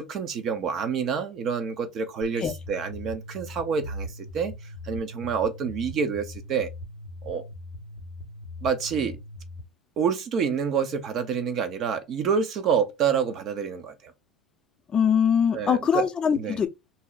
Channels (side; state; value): both; normal; correlation 0.43